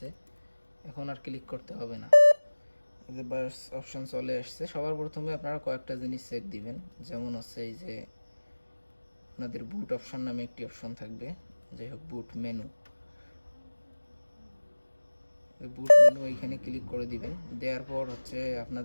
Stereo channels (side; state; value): both; inverted; correlation -1.00